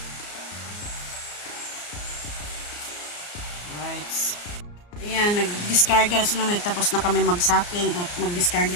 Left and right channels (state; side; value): late; right; 34 ms